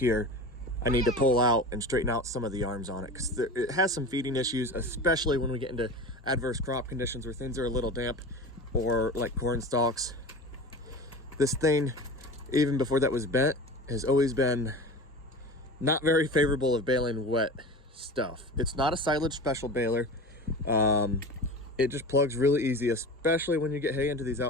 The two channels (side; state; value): both; normal; correlation 0.33